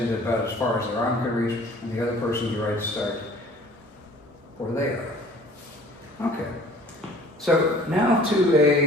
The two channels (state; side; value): normal; both; correlation 0.50